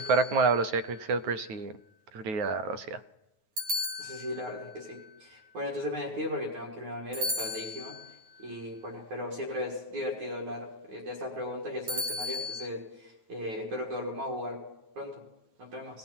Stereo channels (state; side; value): late; left; 9.4 ms